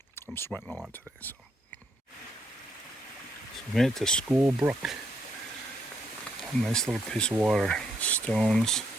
I'm sweating a lot today, so. We made it to School Brook. A nice little piece of water. Stones,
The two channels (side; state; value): both; normal; correlation 0.75